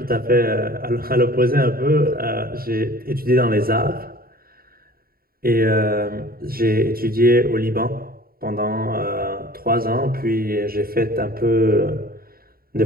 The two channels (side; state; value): left; late; 0.43 ms